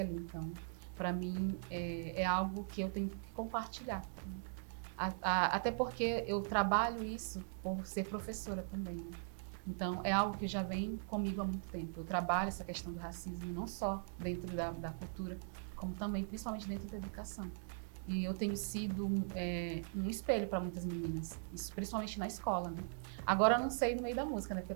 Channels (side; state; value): left; silent; digital silence